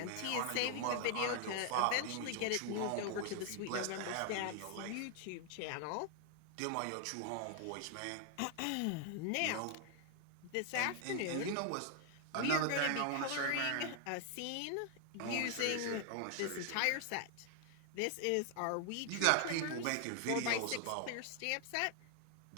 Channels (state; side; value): different; both; correlation 0.00